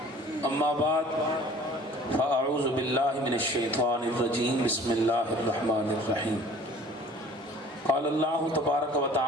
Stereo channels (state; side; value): normal; both; correlation 0.49